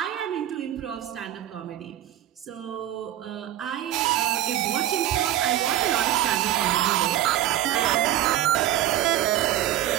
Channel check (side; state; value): left; quieter; 12.9 dB